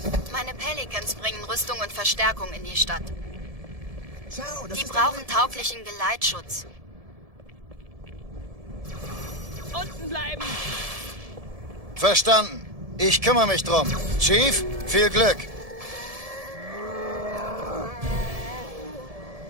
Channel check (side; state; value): left; late; 1.7 ms